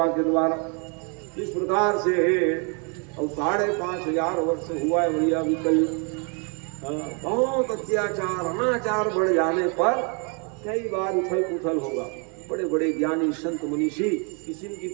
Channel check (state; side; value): quieter; left; 37.0 dB